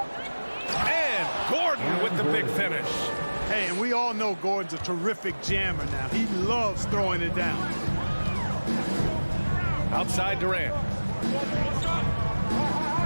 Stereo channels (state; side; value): inverted; both; correlation -1.00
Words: And Gordon with the big finish. Hey, and we all know Gordon's a terrific jammer now. He loves throwing it down. Outside Durant.